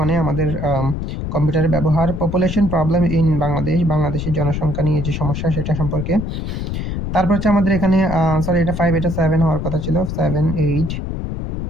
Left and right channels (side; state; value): left; noise; rumble, 4 dB below the sound